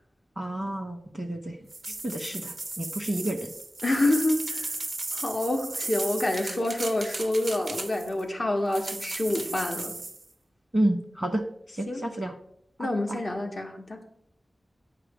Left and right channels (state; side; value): normal; both; correlation 0.95